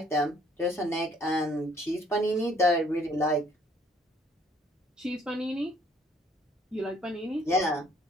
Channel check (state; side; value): normal; both; correlation 0.61